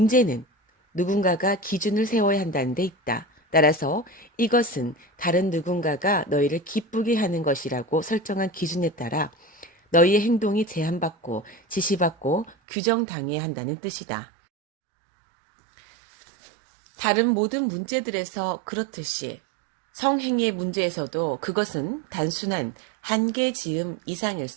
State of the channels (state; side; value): drops out; left; at 12.6 s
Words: 누군가가 기준을 세워야 한다는 데 있다. 따라서 이것은 다른 누군가가 너희를 기쁘게 하는 것이라고 설정한 기준에 따라 너희의 행동이 제한받고 지시받고 규정당해야 한다는 뜻이다. 다른 모든 문제들에서 그렇듯이 성행위의 문제에서도 그것은 단순한 한계 지음 이상일